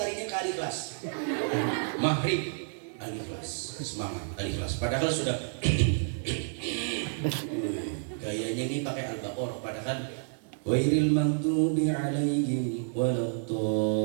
ke Al-Ikhlas. Maghrib Al-Ikhlas, semangat Al-Ikhlas. Padahal sudah gayanya ini pakai Al-Baqarah. Padahal Ghairil maghdubi alaihim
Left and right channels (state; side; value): silent; left; digital silence